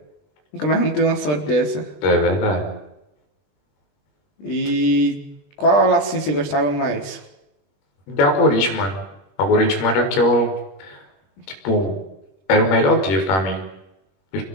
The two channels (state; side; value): late; right; 21 ms